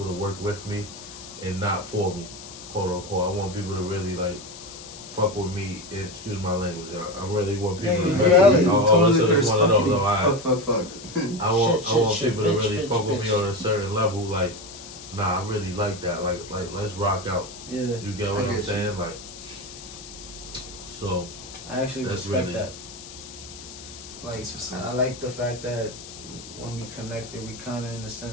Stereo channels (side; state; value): left; noise; hiss, 14 dB below the sound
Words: to work with me and not for me, quote unquote. I want people to really like fuck with me. Excuse my language, y'all. I really want people to Yeah, really. reality. Listen, it's one of those. All right. Fuck. I want Shit, people to bitch, really bitch, fuck with me bitch. on a certain level. Like, nah, I really like that. Like let's rock out. Yeah, You get what I I'm get you. saying? Like, so I actually That's respect really- that. Like, That's what's up. I like the fact that when we connected, we kind of, in a